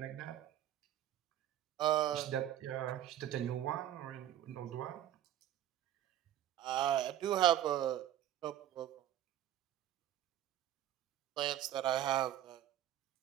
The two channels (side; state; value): left; quieter; 12.0 dB